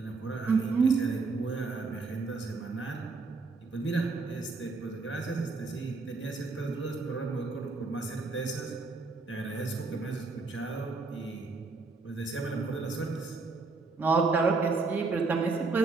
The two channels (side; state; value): left; quieter; 4.0 dB